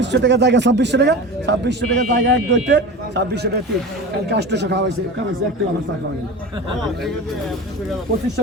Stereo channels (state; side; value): normal; both; correlation 0.31